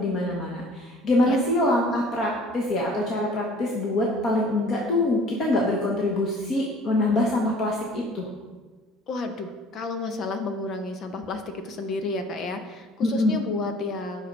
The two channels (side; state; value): both; normal; correlation 0.50